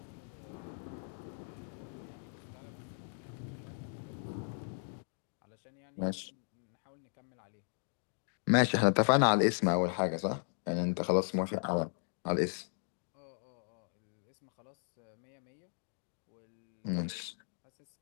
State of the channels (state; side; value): silent; right; digital silence